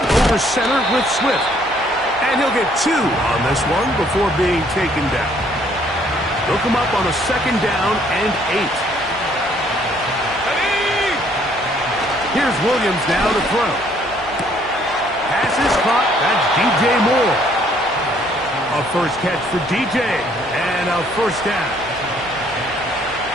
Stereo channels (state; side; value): noise; right; hum, 22 dB below the sound